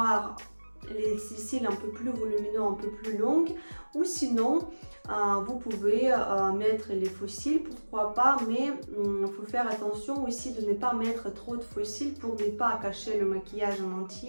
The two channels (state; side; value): inverted; both; correlation -1.00